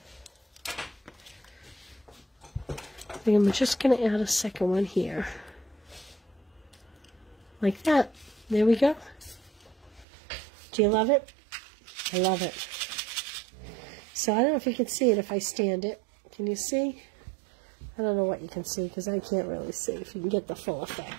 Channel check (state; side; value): drops out; left; at 10.1 s